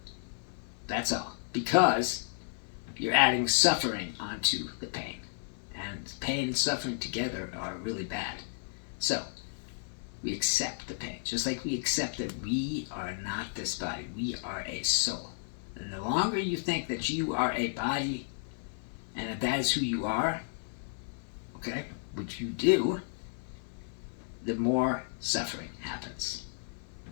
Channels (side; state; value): right; silent; 56 dB below the other